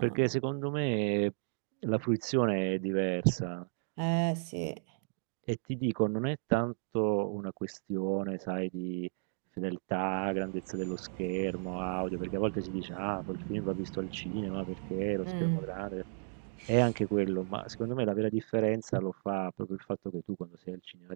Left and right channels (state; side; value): silent; left; digital silence